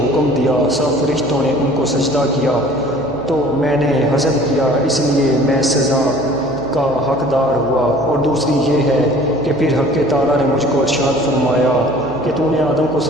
حکم دیا، سب فرشتوں نے ان کو سجدہ کیا، تو میں نے حسد کیا، اس لیے میں سزا کا حقدار ہوا۔ اور دوسری یہ ہے کہ پھر حق تعالیٰ نے مجھ کو ارشاد فرمایا کہ تو نے آدم کو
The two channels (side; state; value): right; noise; hum, 18 dB below the sound